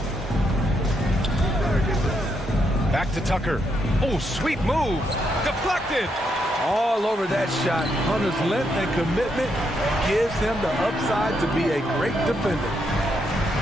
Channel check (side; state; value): both; normal; correlation 0.78